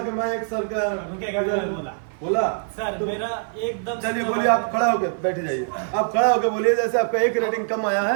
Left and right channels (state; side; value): silent; left; 56 dB below the other